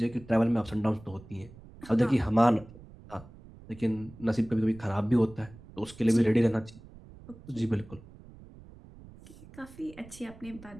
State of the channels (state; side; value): noise; right; rumble, 20 dB below the sound